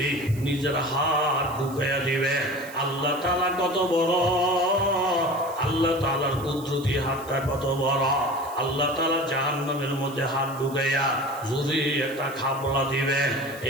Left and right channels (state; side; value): noise; right; hiss, 19 dB below the sound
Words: নিজের হাত ঢুকাইয়া দিবে। আল্লাহ তাআলা কত বড়, আল্লাহ তাআলার কুদরতি হাতটা কত বড়। আল্লাহ তাআলা জাহান্নামের মধ্যে হাত ঢুকাইয়া যদি একটা খাবলা দিবেন,